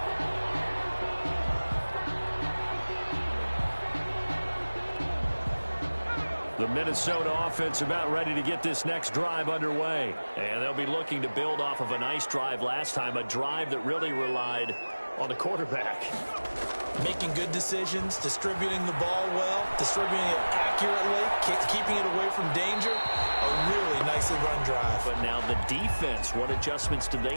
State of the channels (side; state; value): both; inverted; correlation -1.00